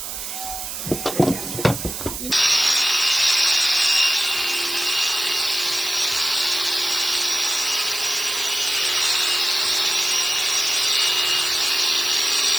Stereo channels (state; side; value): noise; right; hiss, 7 dB below the sound